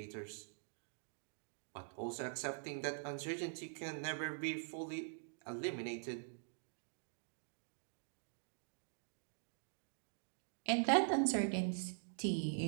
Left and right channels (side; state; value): left; silent; digital silence